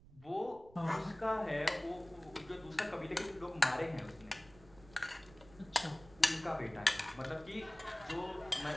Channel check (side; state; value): right; noise; rumble, 23 dB below the sound